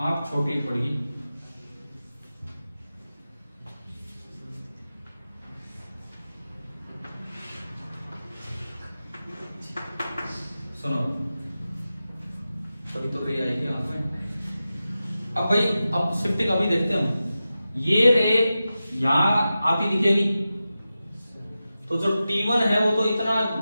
छोटी पड़ेगी, सुनो तभी तो रे आएगी आंख में। अब भाई अब शिफ्टिंग अभी देखते हैं हम, ये रे यहां आती दिखेगी तो जो T1 है वो तो इतना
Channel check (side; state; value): both; inverted; correlation -0.93